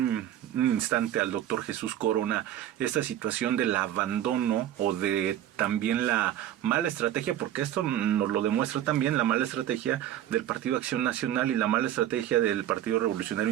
instante al doctor Jesús Corona esta situación del abandono o de también la mala estrategia, porque esto nos lo demuestra también, la mala estrategia del Partido Acción Nacional y la mala estrategia del Partido Revolucionario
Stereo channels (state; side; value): quieter; left; 11.7 dB